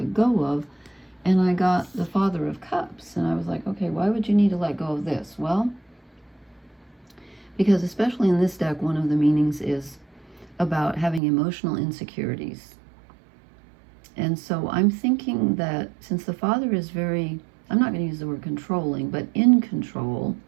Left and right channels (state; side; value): drops out; left; at 11.2 s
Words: go of? And I got the Father of Cups. And I was like, okay, why would you need to let go of this? Well, because especially in this deck, one of the meanings is about having emotional insecurities. And so I'm thinking that since the Father is very, I'm not going to use the word controlling, but in control